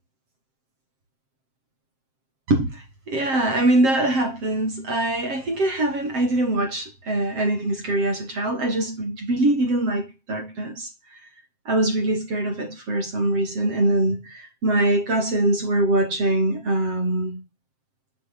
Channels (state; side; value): late; left; 7.6 ms